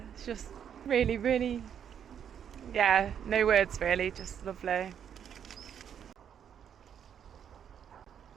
It's just really, really, yeah, no words really, just lovely.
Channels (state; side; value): quieter; left; 8.6 dB